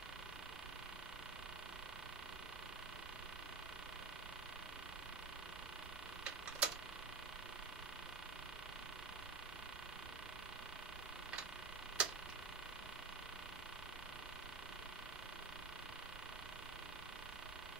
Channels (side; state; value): left; quieter; 4.3 dB